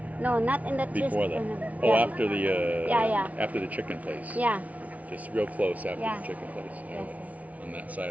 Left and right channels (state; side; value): late; left; 0.069 ms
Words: No, not in the chest. Before that. tournament. Oh, Yeah. after the Yeah. after the chicken place. Yeah. Just real close after Yeah. the chicken place. Yes. On that side